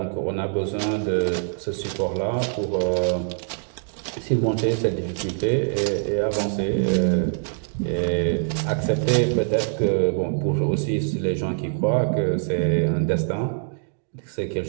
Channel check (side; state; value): left; silent; digital silence